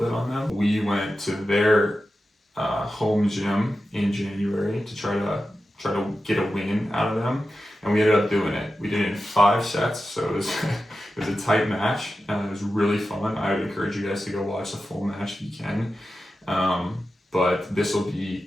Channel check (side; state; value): both; normal; correlation 0.92